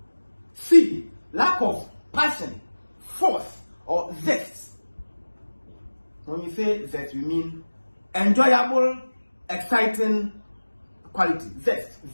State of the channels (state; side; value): inverted; both; correlation -1.00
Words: C, lack of passion, force, or zest. When we say zest, we mean enjoyable, exciting quality. Zest.